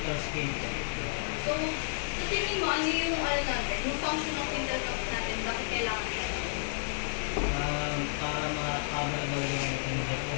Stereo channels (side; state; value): right; silent; digital silence